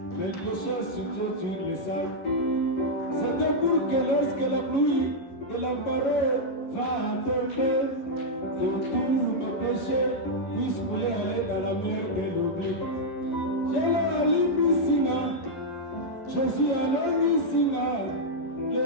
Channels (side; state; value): right; late; 11 ms